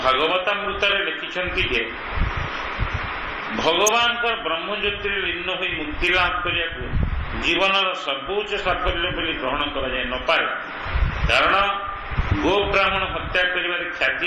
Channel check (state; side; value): identical; both; correlation 1.00